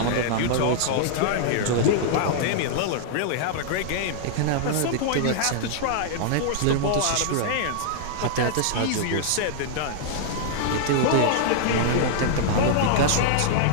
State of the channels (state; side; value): different; both; correlation -0.01